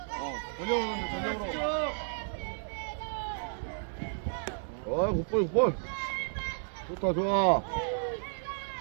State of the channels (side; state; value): left; silent; digital silence